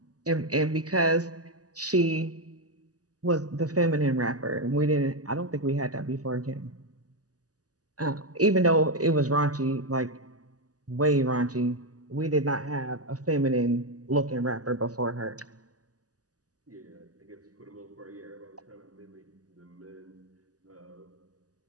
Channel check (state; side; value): late; left; 0.67 ms